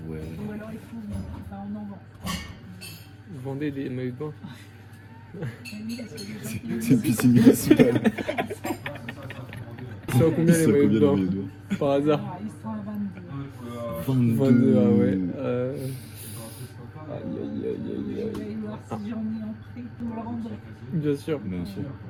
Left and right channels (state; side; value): identical; both; correlation 1.00